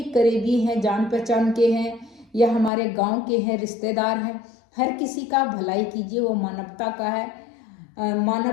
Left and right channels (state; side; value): drops out; right; at 2.7 s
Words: करीबी हैं, जान पहचान के हैं या हमारे गांव के हैं, रिश्तेदार हैं, हर किसी का भलाई कीजिए, वो मानवता का है,